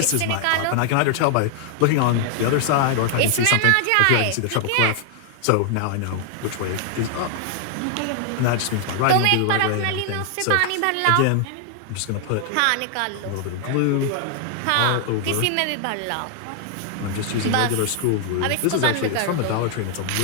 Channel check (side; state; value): both; different; correlation 0.00